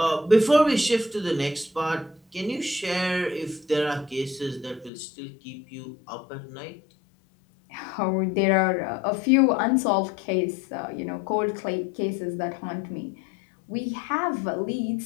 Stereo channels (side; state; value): right; drops out; at 4.9 s